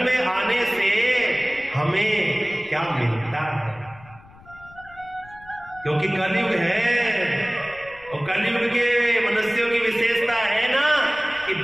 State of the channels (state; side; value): noise; left; rumble, 23 dB below the sound